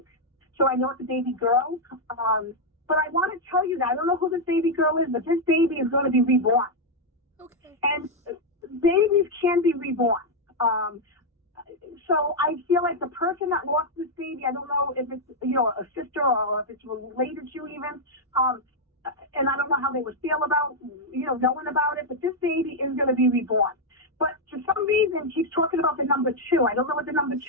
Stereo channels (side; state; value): both; normal; correlation -0.01